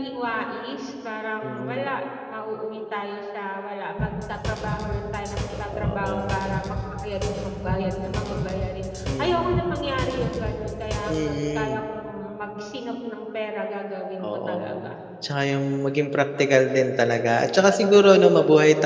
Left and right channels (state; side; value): identical; both; correlation 1.00